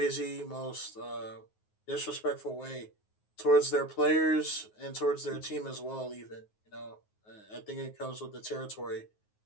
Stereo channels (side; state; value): right; late; 9.4 ms